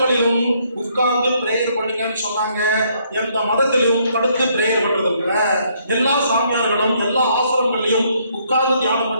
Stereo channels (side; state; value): both; inverted; correlation -0.69